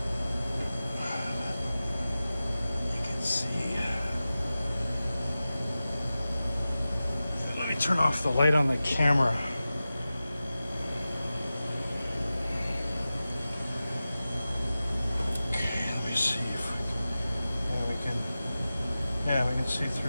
turn off the light on the camera. Okay, let me see if we can see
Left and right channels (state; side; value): inverted; both; correlation -0.95